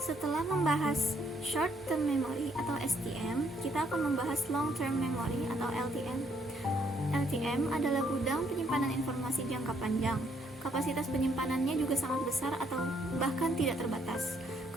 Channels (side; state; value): both; normal; correlation 0.70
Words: membahas short term memory atau STM, kita akan membahas long term memory atau LTM. LTM adalah gudang penyimpanan informasi jangka panjang. Kapasitas penyimpanannya juga sangat besar atau bahkan tidak terbatas.